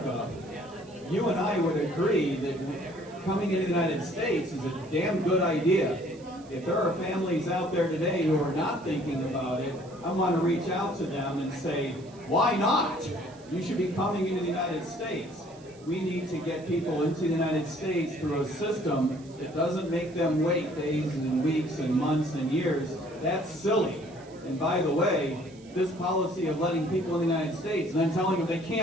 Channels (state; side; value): noise; right; hiss, 26 dB below the sound